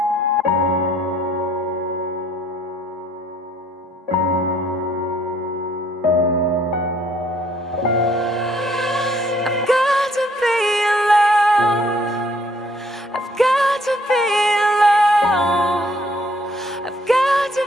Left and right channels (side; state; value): both; normal; correlation 0.63